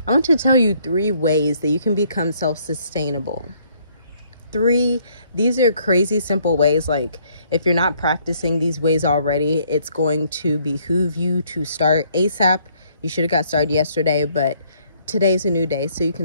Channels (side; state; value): both; inverted; correlation -0.66